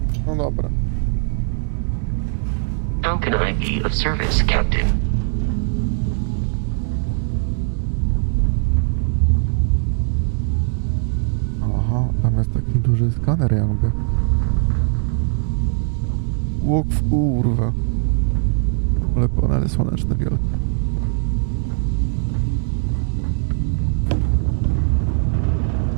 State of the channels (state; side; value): silent; left; 58 dB below the other